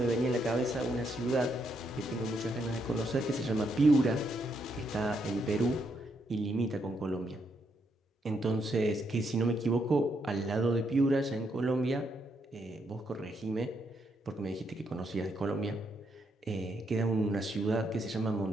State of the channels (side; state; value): both; normal; correlation 0.77